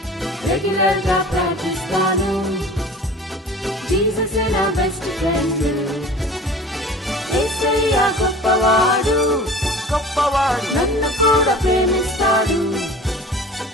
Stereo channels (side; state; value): both; normal; correlation 0.41